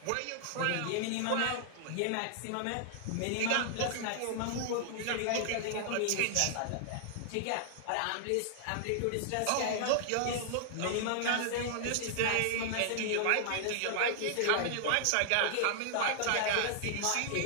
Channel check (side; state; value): both; different; correlation 0.00